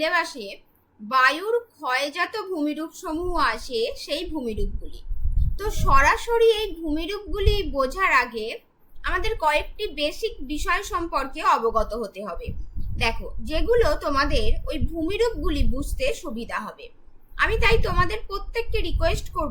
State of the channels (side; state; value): both; identical; correlation 1.00